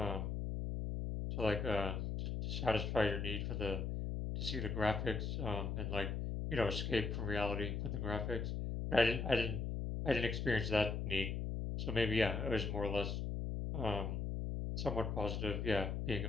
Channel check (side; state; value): left; noise; hum, 2 dB below the sound